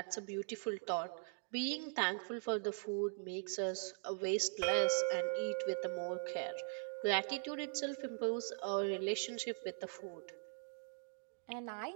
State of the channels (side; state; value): left; silent; 50 dB below the other